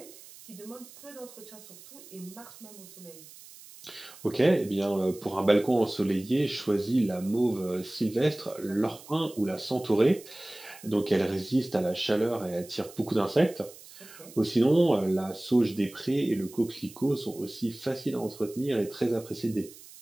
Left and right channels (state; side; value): noise; right; hiss, 19 dB below the sound